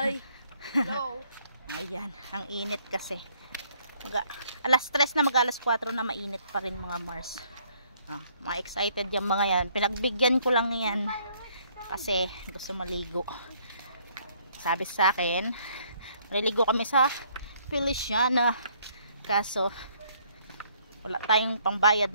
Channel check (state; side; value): inverted; both; correlation -0.65